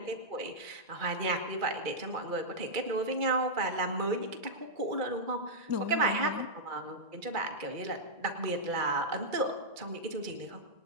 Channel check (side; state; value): left; late; 2.3 ms